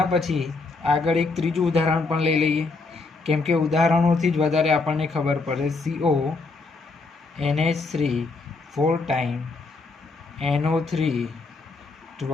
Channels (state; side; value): quieter; right; 3.8 dB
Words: પછી આગળ એક ત્રીજું ઉદાહરણ પણ લઈ લઈએ, કેમ કે ઉદાહરણોથી જ વધારે આપણને ખબર પડે. CONH3 4 ટાઈમ NO3